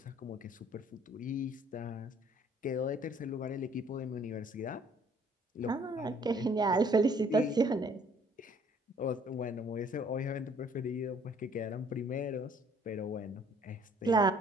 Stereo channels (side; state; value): both; normal; correlation 0.59